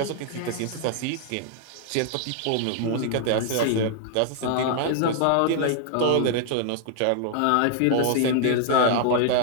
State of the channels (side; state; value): both; different; correlation 0.00